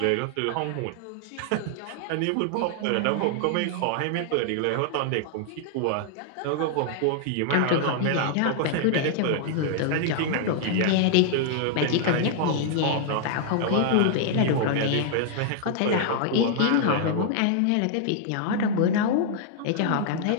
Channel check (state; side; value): different; both; correlation 0.00